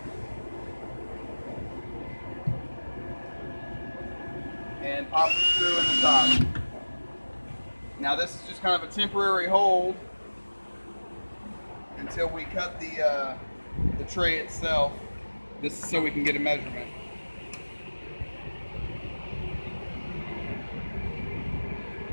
And pop the screw in the top. Now this is just kind of a temporary hold until we cut the tray itself. This is so we can get a measurement.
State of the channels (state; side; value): inverted; both; correlation -1.00